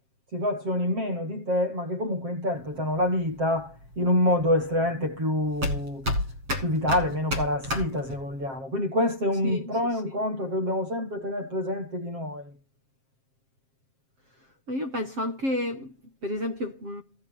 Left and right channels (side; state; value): left; late; 7.5 ms